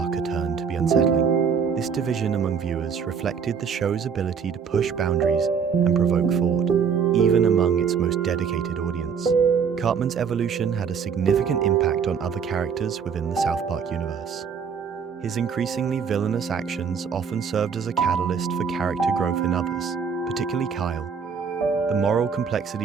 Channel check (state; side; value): quieter; left; 6.5 dB